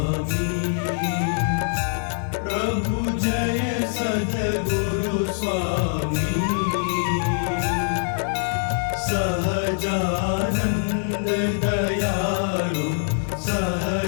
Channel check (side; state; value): right; silent; 63 dB below the other